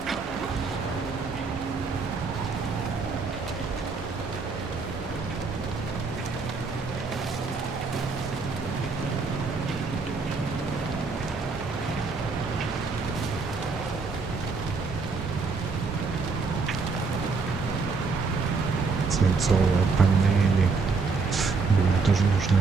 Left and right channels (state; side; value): quieter; left; 4.4 dB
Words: Свинцовые панели. Блин, тоже